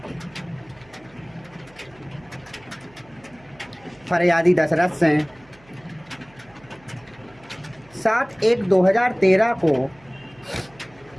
फरियादी दशरथ सिंह 7/1/2013 को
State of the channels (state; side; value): noise; right; hum, 27 dB below the sound